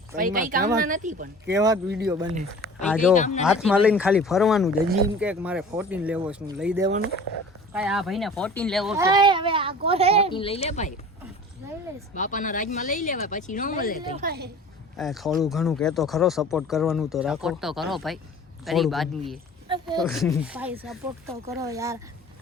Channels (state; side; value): normal; both; correlation 0.43